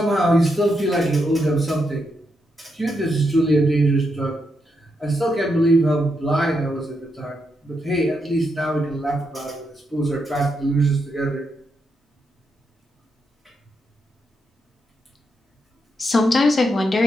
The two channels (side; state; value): both; normal; correlation 0.82